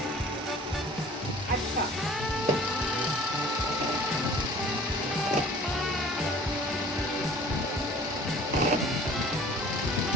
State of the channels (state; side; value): normal; both; correlation 0.48